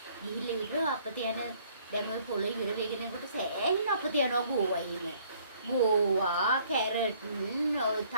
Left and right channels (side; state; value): both; inverted; correlation -0.61